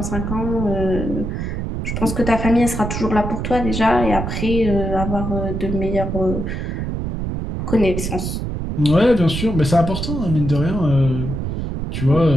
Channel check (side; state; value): right; noise; rumble, 4 dB below the sound